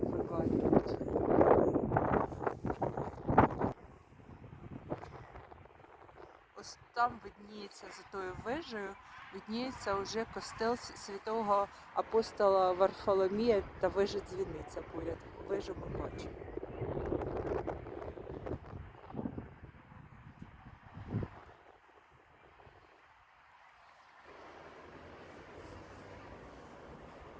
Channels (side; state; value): both; identical; correlation 1.00